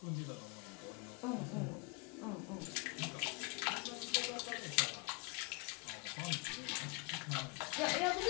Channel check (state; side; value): quieter; right; 31.8 dB